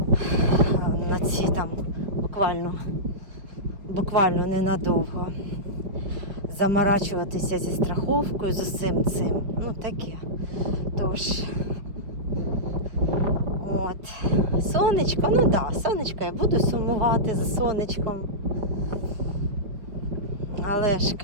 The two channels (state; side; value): late; left; 4.7 ms